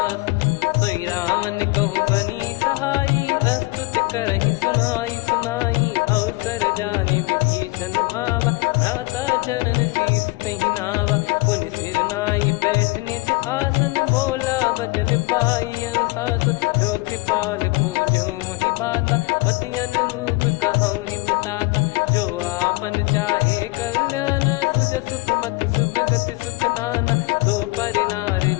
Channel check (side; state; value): right; quieter; 23.5 dB